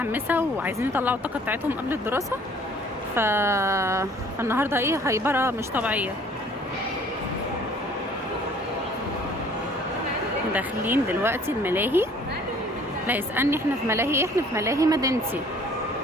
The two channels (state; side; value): normal; both; correlation 0.55